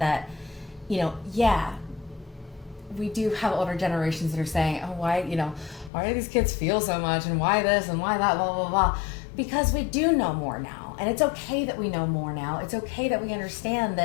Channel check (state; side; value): drops out; right; at 5.9 s